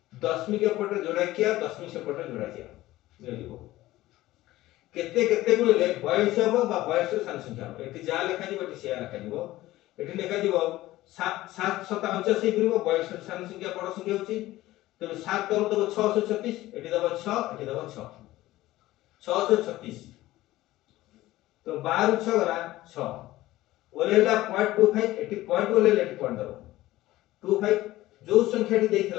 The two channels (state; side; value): quieter; right; 16.6 dB